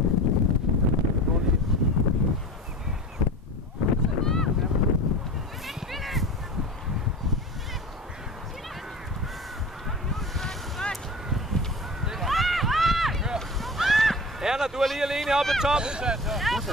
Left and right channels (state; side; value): normal; both; correlation 0.35